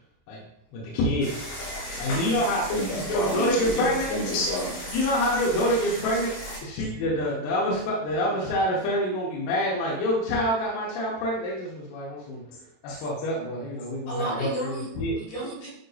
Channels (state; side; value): late; right; 27 ms